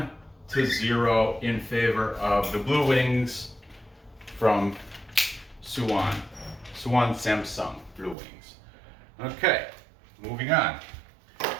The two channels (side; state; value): left; drops out; at 8.2 s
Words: in favor of the Blue Wings from Suwon. Suwon Samsung Blue Wings. Okay, moving on.